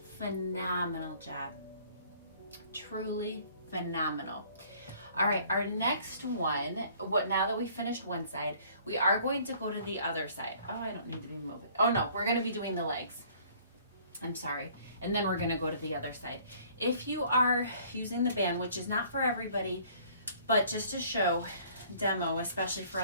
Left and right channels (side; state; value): both; inverted; correlation -0.56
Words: Phenomenal job. Truly phenomenal. All right, our next one, now that we finished one side, we are going to go to the other side. Oh, I don't need to be moving. Oh no, we're going to be doing the legs. I'm sorry. And then we're going to go to the other side. If you are using the band, which is not for everybody, but just to show, demo, especially for